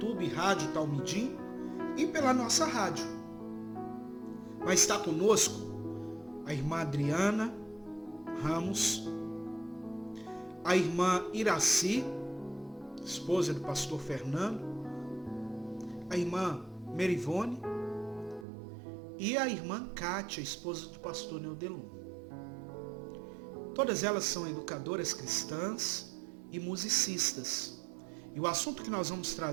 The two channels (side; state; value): left; drops out; at 18.4 s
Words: Rádio Talmidim, e pela nossa rádio. Vai estar conosco a irmã Adriana Ramos, a irmã Iraci, esposa do pastor Fernando, a irmã Merivone e a irmã Kátia, esposa do pastor Neudelum. Todas elas são educadoras cristãs e musicistas. E o assunto que nós vamos